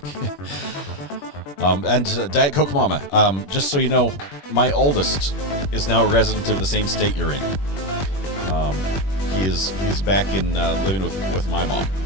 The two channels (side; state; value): right; late; 21 ms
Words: And Diet Coke Mama, just so you know, my oldest is now a resident of the same state you're in. he is back in living with my mom.